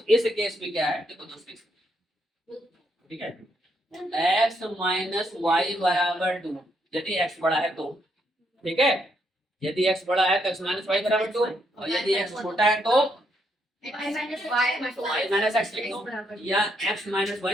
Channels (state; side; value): normal; both; correlation 0.76